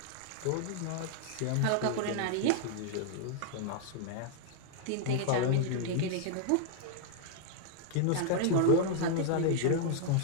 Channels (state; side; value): different; both; correlation 0.00